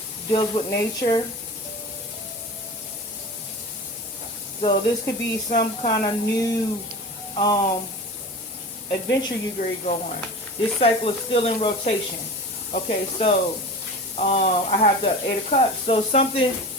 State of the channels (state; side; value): normal; both; correlation 0.33